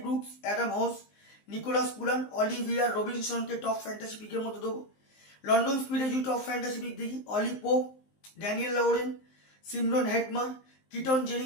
Brooks, Adam Hose, Nicholas Pooran, অলিভিয়ার রবিনসনকে টপ ফ্যান্টাসি পিকের মধ্যে দেবো। লন্ডন স্পিডে যদি টপ ফ্যান্টাসি পিক দেখি, Ollie Pope, Daniel Lawrence, Shimron Hetmyer, Keaton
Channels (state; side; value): late; right; 19 ms